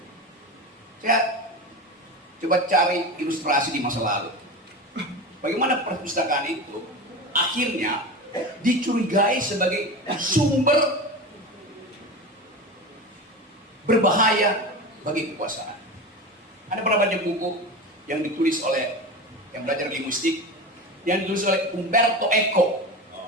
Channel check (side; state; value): both; normal; correlation 0.26